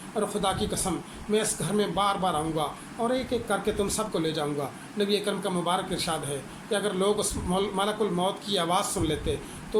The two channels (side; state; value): both; identical; correlation 1.00